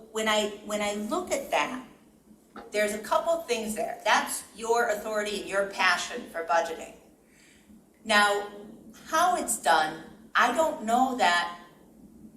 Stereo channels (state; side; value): identical; both; correlation 1.00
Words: when I look at that, there's a couple things there. That's your authority and your passion for budgeting. Now, how it's done, I don't know that